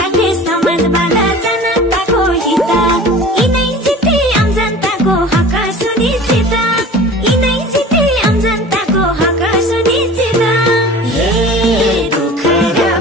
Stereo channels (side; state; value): both; normal; correlation 0.40